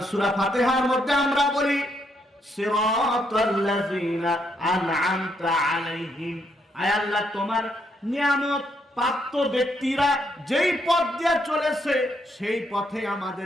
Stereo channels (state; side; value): normal; both; correlation 0.76